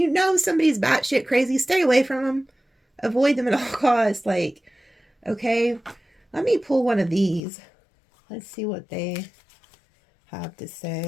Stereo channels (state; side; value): drops out; right; at 7.4 s